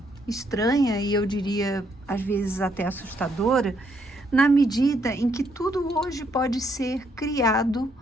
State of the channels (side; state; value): both; normal; correlation 0.72